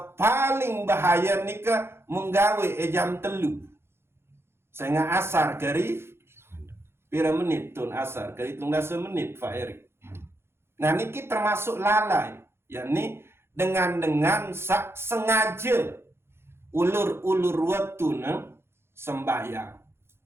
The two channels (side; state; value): left; late; 0.12 ms